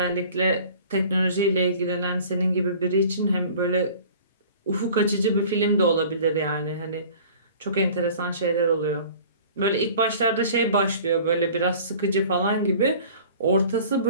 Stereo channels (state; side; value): inverted; both; correlation -0.46